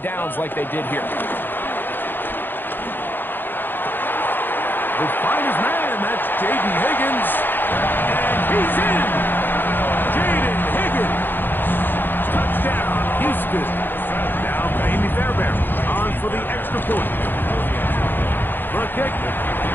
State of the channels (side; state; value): right; late; 0.095 ms